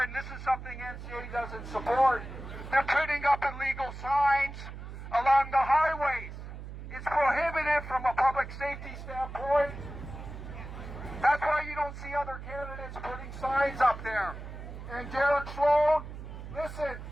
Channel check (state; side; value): noise; right; hum, 11 dB below the sound